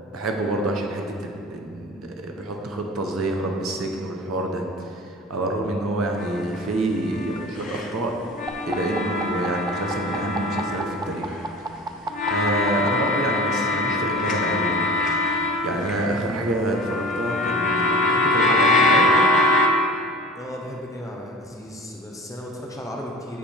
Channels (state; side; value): normal; both; correlation 0.38